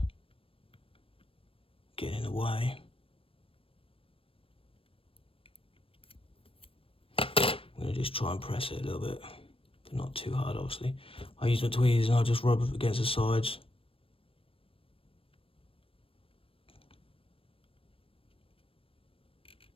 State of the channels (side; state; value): right; late; 0.27 ms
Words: getting in the way. I'm going to just try and press it a little bit, but not too hard, obviously. I use my tweezers and I'll just rub it against the sides.